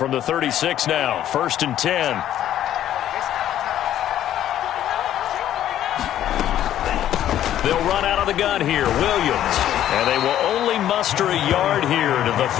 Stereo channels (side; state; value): right; quieter; 11.7 dB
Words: the 36 now, 1st and 10. They'll run out of the gun here, Williams. And they will only muster a yard here to the